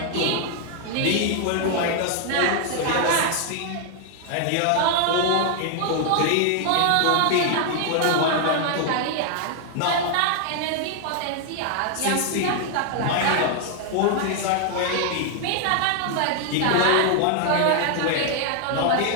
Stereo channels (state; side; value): different; both; correlation 0.00